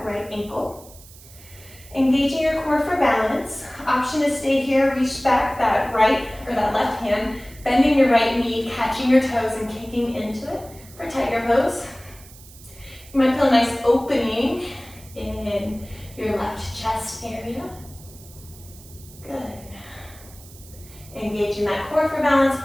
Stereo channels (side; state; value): right; noise; hiss, 21 dB below the sound